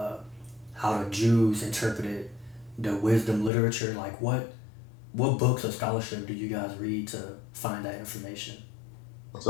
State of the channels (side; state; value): right; drops out; at 3.5 s